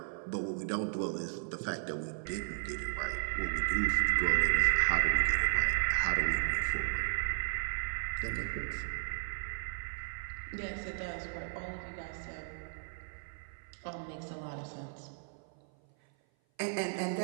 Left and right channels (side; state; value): left; silent; 55 dB below the other